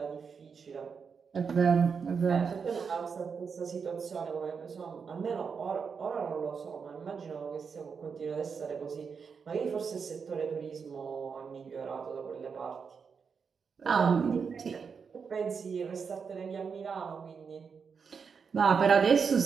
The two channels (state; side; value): quieter; left; 5.9 dB